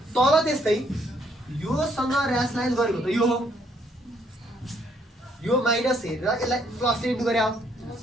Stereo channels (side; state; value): both; normal; correlation 0.69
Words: तल त्यस्तै योसँग र्यासलाइज गरेको त यो हो यो माइनस हेरेर यसलाई प्लस इन्टु गरे हो